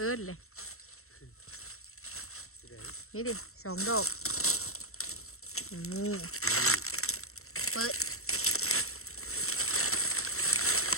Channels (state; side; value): late; right; 0.63 ms